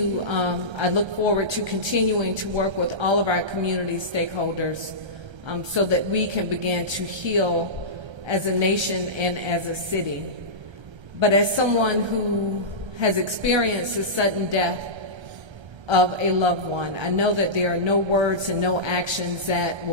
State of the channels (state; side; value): late; left; 1.3 ms